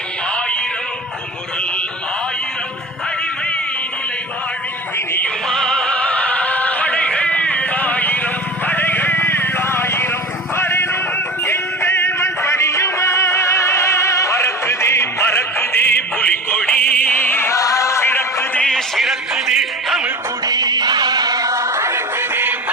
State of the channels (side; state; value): both; normal; correlation 0.33